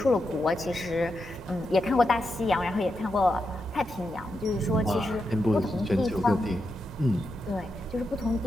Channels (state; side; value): normal; both; correlation 0.86